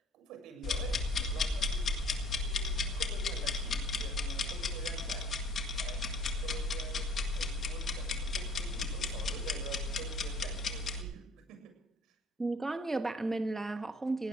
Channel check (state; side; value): normal; both; correlation 0.55